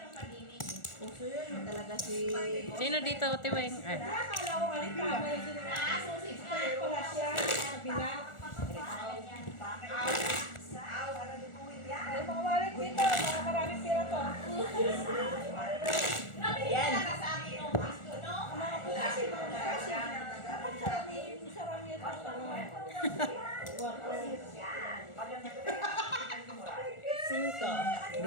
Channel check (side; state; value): right; late; 1.4 ms